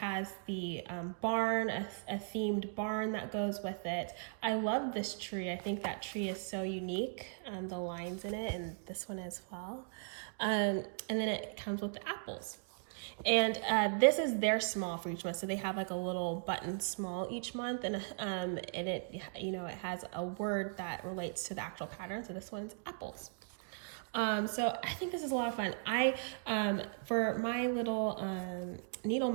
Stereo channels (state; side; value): silent; left; digital silence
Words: the barn, a themed barn that goes with it. I love this tree. I think that tree is so unique, the lines in it, and this one as well. And then it comes with the apples. And this is their small for each month. So they have like a little button small each month, and it, you know, it has a word that relates to the actual pattern. So this one's apples. So I think this is a lot of fun. For my little needle